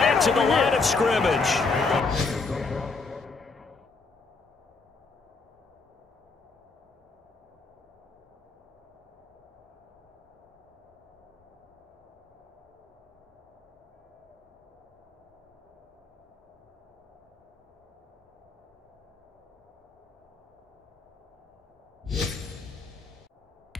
to the line of scrimmage.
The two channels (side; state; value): right; quieter; 4.1 dB